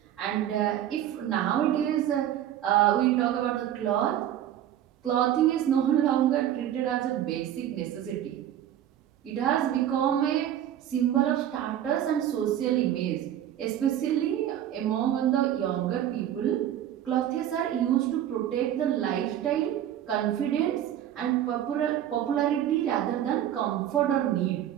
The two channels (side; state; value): left; quieter; 11.1 dB